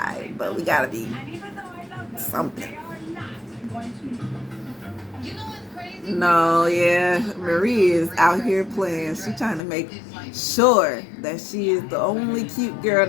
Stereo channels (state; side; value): drops out; right; at 9.6 s